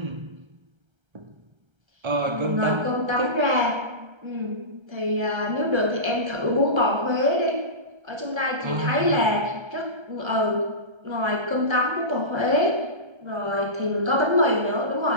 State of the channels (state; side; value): late; left; 1.3 ms